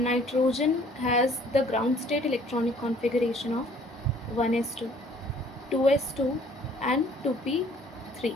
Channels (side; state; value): both; normal; correlation 0.57